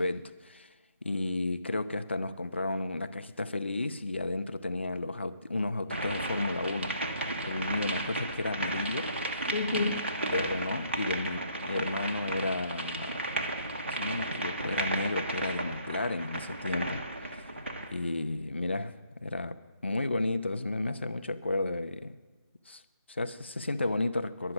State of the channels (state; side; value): inverted; both; correlation -0.70